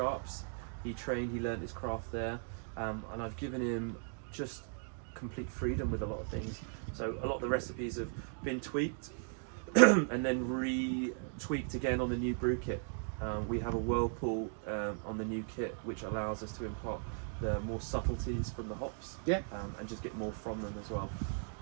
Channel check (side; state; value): left; silent; 53 dB below the other